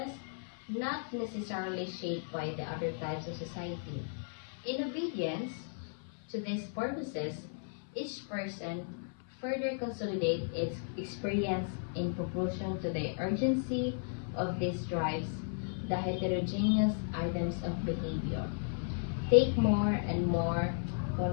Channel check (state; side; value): silent; right; 54 dB below the other